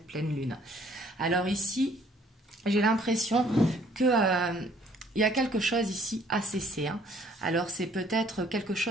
pleine lune. Alors ici, j'ai l'impression que il y a quelque chose ici à cesser. Alors c'est peut-être quelque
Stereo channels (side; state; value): both; normal; correlation 0.60